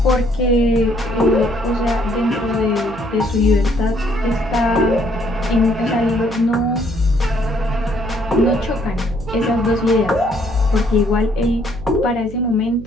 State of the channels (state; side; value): noise; right; hum, 14 dB below the sound